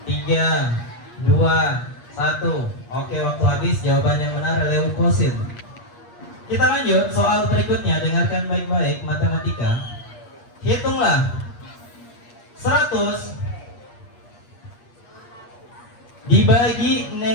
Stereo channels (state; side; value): late; right; 8.5 ms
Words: 3, 2, 1. Oke, waktu habis. Jawaban yang benar leukosit. Kita lanjut soal berikutnya. Dengarkan baik-baik. Matematika. Hitunglah 100 dibagi